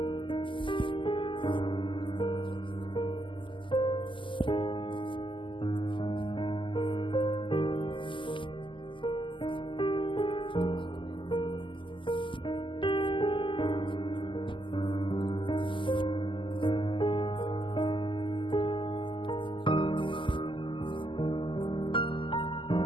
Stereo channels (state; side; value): late; right; 0.25 ms